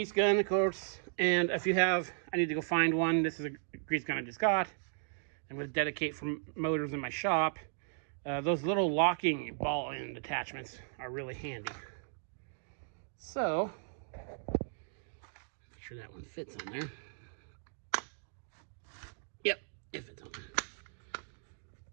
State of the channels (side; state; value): left; silent; digital silence